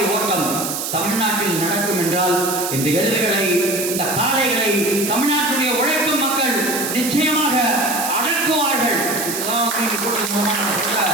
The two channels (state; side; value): noise; right; hiss, 4 dB below the sound